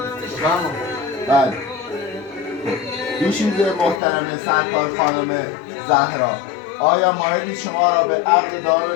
بله. دوشیزه محترم سرکار خانم زهرا، آیا مایلید شما را به عقد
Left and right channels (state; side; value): drops out; right; at 4.0 s